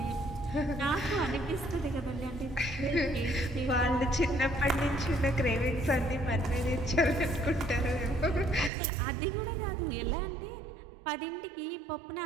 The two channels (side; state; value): left; drops out; at 8.7 s